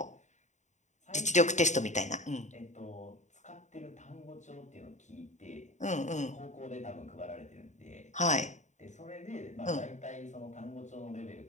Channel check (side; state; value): right; late; 0.34 ms